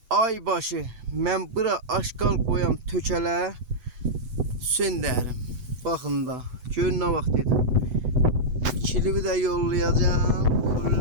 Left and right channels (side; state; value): left; late; 8.0 ms